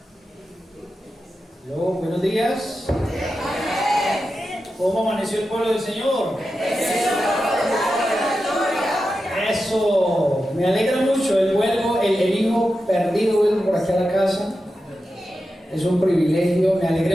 Hello, buenos días. ¿Cómo amaneció el pueblo del Señor? Eso, me alegra mucho. El hijo perdido vuelve por aquí a la casa. Es un privilegio. Me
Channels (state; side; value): normal; both; correlation 0.91